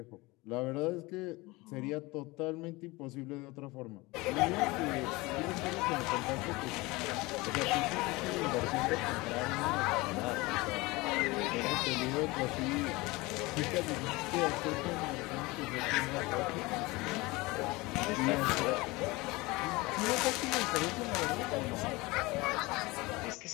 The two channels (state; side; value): quieter; right; 22.6 dB